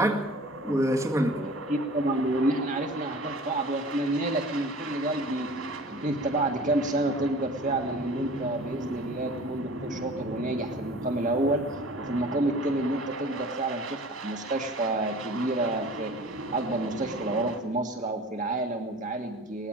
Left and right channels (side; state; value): both; normal; correlation 0.43